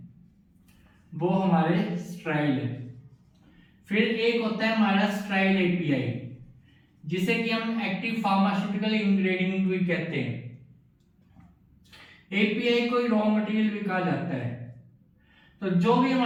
वो हमारे स्ट्राइल है। फिर एक होता है हमारा स्ट्राइल एपीआई, जिसे कि हम एक्टिव फार्मास्यूटिकल इंग्रेडिएंट भी कहते हैं। एपीआई कोई रॉ मटेरियल भी कहा जाता है। तो जो भी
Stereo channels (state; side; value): identical; both; correlation 1.00